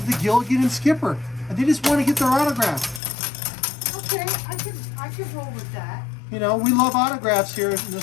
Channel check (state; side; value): drops out; right; at 3.0 s